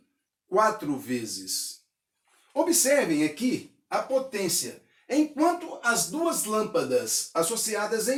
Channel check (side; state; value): both; identical; correlation 1.00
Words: 4 vezes. Observem aqui a potência. Enquanto as 2 lâmpadas associadas